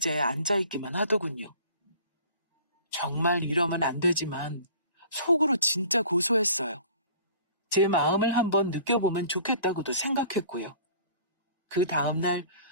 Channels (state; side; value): inverted; both; correlation -0.48